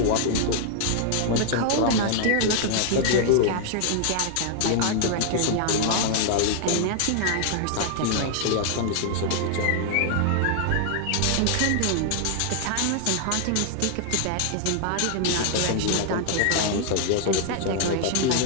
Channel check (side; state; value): both; different; correlation 0.00